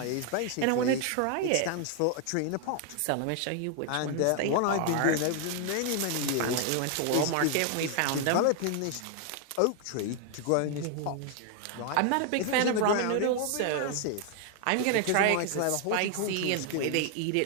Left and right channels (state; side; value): different; both; correlation 0.00